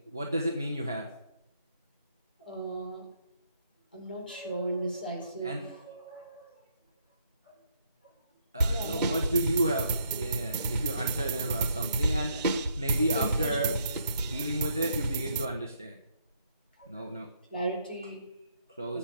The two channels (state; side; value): inverted; both; correlation -0.73